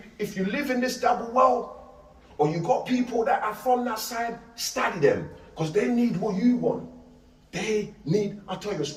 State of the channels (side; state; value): both; identical; correlation 1.00